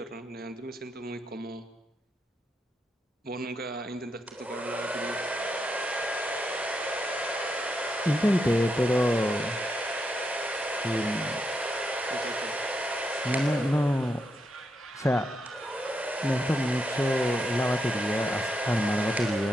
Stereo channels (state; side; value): normal; both; correlation 0.82